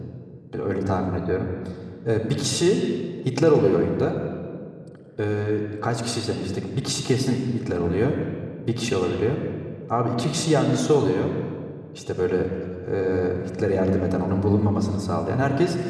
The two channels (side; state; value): both; identical; correlation 1.00